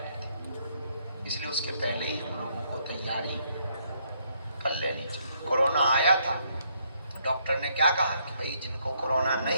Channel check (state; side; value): inverted; both; correlation -0.72